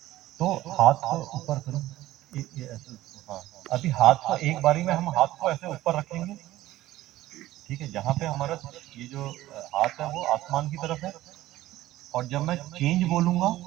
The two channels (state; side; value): quieter; left; 15.6 dB